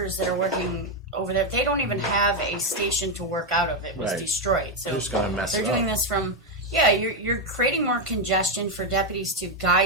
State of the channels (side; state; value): both; normal; correlation 0.04